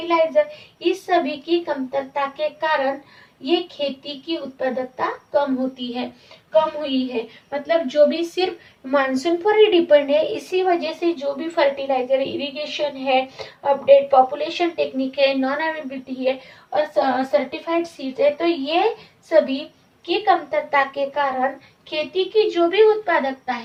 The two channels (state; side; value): identical; both; correlation 1.00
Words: इस सभी की कमतरता के कारण ये खेती की उत्पादकता कम हुई है। मतलब जो भी सिर्फ मानसून पर ही डिपेंड है, इसी वजह से जो भी फर्टिलाइजर, इरिगेशन है, अपडेट पॉपुलेशन टेक्निक है, नॉन अवेलेबिलिटी है और सर्टिफाइड सीड्स है, तो ये सभी की कमतरता के कारण खेती की जो भी उत्पादकता